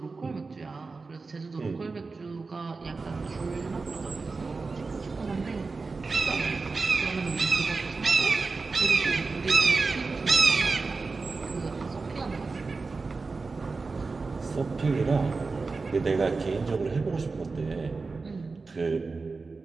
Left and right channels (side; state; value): left; quieter; 4.1 dB